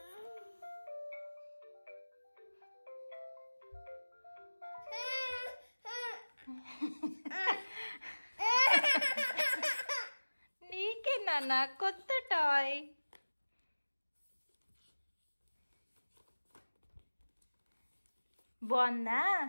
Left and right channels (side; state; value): both; inverted; correlation -1.00